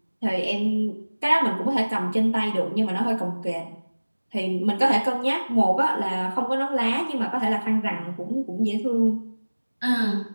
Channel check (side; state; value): both; inverted; correlation -1.00